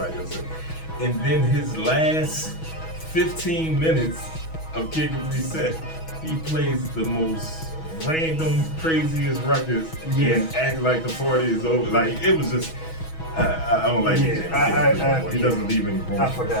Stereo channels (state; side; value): late; right; 6.2 ms